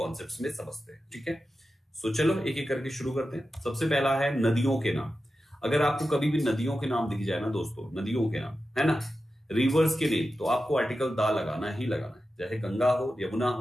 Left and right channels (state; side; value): normal; both; correlation 0.92